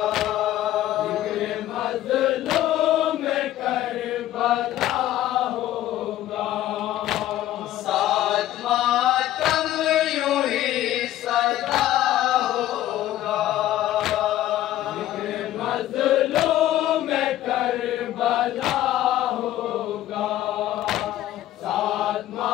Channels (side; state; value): right; quieter; 13.7 dB